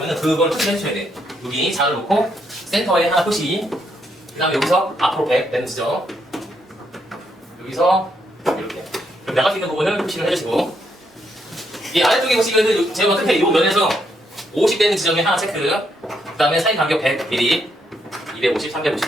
그걸 표시해 주셔야 돼요. 여기 자를 놓고 센터에 하나 표시, 그 다음에 여기서 앞으로 100 되는 지점, 여기서 이렇게 나갈 수 있는 부분을 표시를 해주시고, 이 아래쪽에 보시면은 제가 끝에 이 면에서 50 되는 지점에 하나 체크, 그 다음에 사이 간격 100mm, 250,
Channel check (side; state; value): both; normal; correlation 0.76